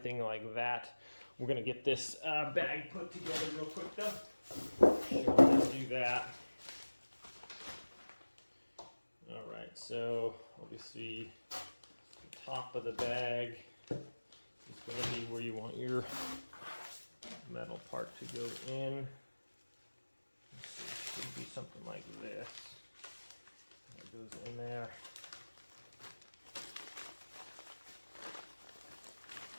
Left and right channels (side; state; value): both; inverted; correlation -1.00